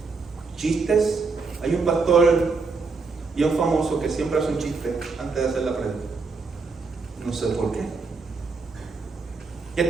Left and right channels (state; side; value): quieter; left; 4.3 dB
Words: chistes. Hay un pastor bien famoso que siempre hace un chiste antes de hacer la prédica. No sé por qué. ¿Qué